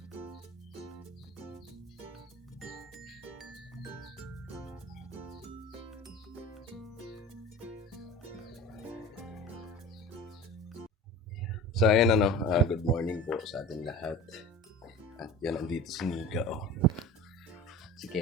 So ayan good morning po sa ating lahat. At yan, andito si Nika, si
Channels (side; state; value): both; normal; correlation 0.37